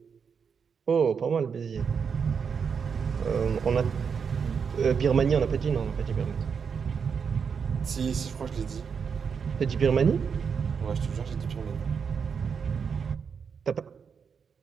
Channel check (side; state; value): left; quieter; 6.4 dB